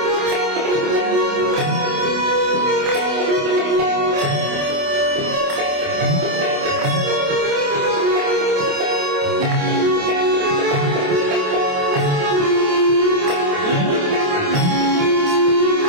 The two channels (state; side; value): late; left; 28 ms